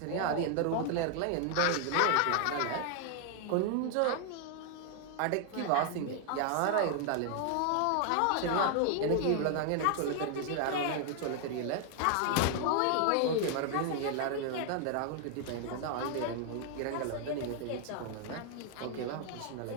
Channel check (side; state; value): both; different; correlation 0.00